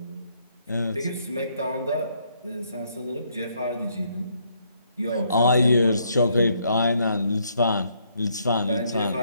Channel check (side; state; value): both; inverted; correlation -0.72